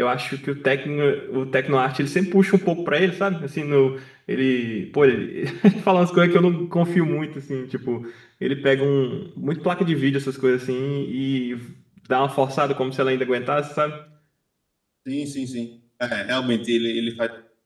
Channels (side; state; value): both; identical; correlation 1.00